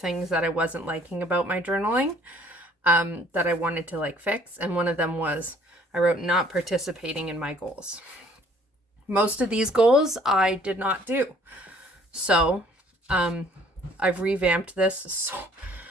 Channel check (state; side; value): normal; both; correlation 0.58